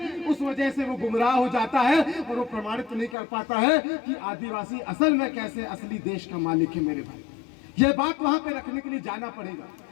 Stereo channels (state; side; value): drops out; right; at 3.2 s